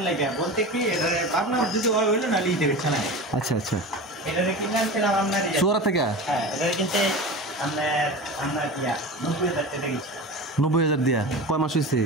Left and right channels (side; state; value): both; normal; correlation 0.30